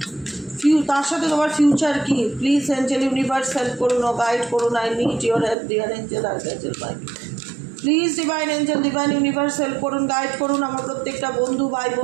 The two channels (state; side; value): drops out; left; at 5.6 s